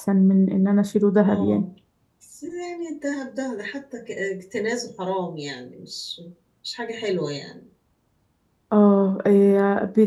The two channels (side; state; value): both; identical; correlation 1.00